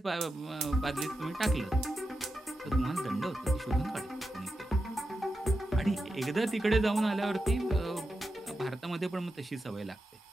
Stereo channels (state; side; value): normal; both; correlation 0.89